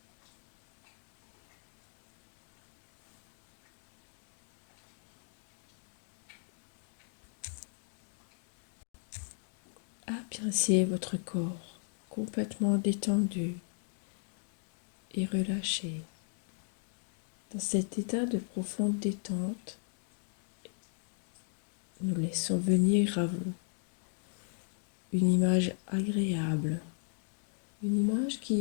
Appréciez votre corps complètement détendu et relâché. Dans cet état de profonde détente, nous laissons venir à vous une image agréable, une image qui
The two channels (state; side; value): silent; right; 54 dB below the other